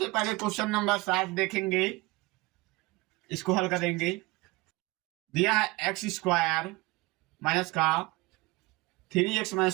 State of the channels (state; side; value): quieter; left; 22.7 dB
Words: पहले क्वेश्चन नंबर 7 देखेंगे, इसको हल करेंगे। दिया है एक्स स्क्वायर माइनस का 3x